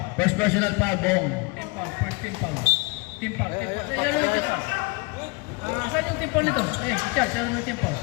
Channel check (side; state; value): right; quieter; 27.8 dB